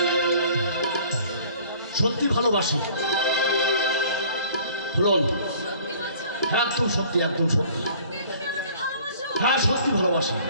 সত্যি ভালোবাসি ফুলন। হ্যাঁ, একদম সত্যি, একদম সত্যি। হ্যাঁ, সত্যি ভালোবাসি।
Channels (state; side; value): inverted; both; correlation -0.52